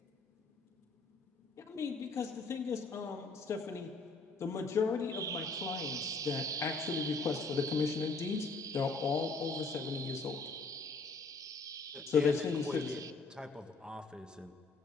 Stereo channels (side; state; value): right; quieter; 3.7 dB